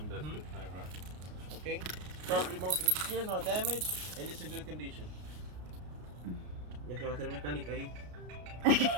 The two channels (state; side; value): late; left; 33 ms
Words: that's the tie rod. Okay? Properly mounted and secure, no damage, and it's in good condition. Ya se va a hacer mecánica ahí.